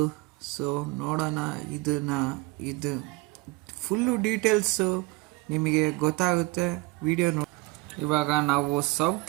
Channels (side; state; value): left; quieter; 23.0 dB